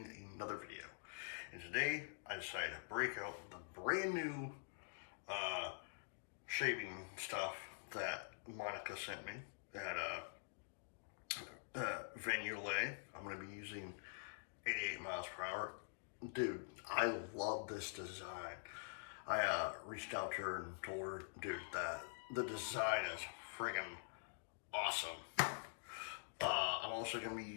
another video, and today I decided to break out the brand new shaving stuff that Monica sent me at Yulay. I'm going to be using 88 miles per hour. Dude, I love this design. I reached out to her and told her, dude, that the design is friggin' awesome. I'm also going to be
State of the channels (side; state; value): right; silent; digital silence